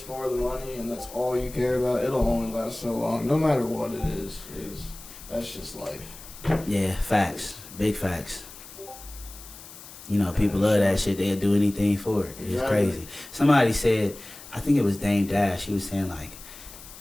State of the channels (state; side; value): noise; left; hiss, 17 dB below the sound